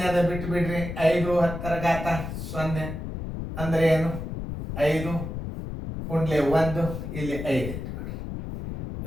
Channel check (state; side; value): noise; left; rumble, 7 dB below the sound